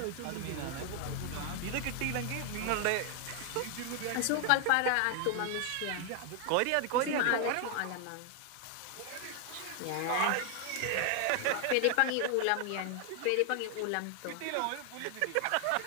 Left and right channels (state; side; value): different; both; correlation 0.00